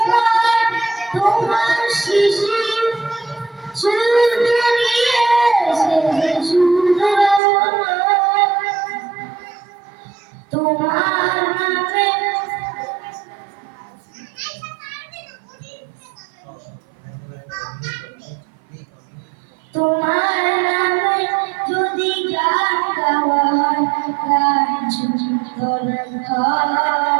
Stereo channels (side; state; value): left; drops out; at 7.4 s